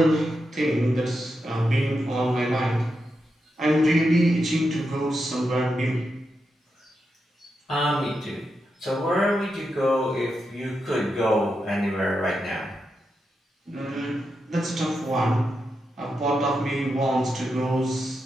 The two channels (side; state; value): both; normal; correlation 0.86